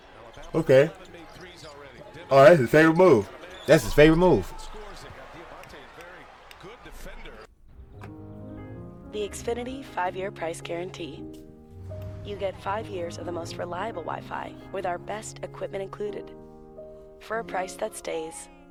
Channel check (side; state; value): both; identical; correlation 1.00